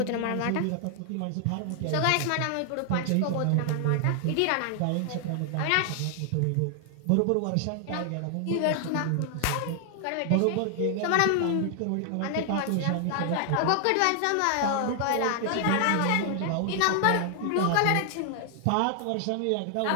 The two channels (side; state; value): both; different; correlation 0.00